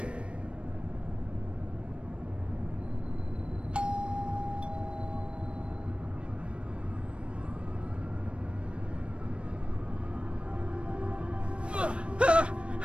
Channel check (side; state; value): left; late; 0.059 ms